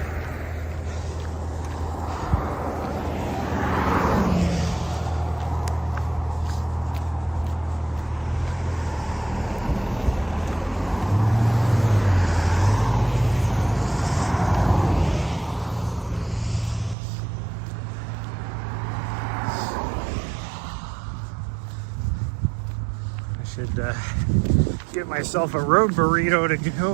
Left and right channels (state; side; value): drops out; left; at 16.9 s